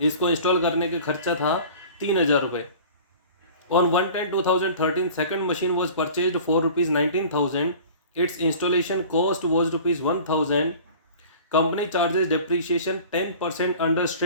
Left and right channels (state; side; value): inverted; both; correlation -0.42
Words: इसको install करने का खर्चा था 3,000 रुपये। On 1/10/2013 second machine was purchased for ₹19,000। It's installation cost was ₹1,000। Company charges depreciation 10% under